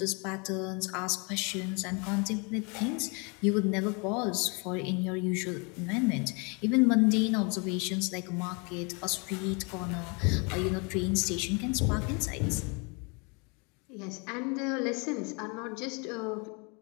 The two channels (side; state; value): right; quieter; 32.5 dB